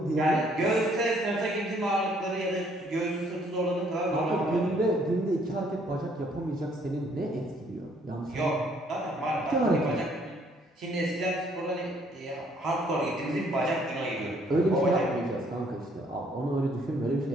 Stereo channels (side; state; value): both; normal; correlation 0.64